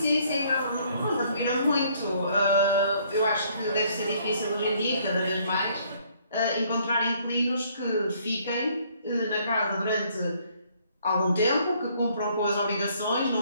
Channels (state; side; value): inverted; both; correlation -0.64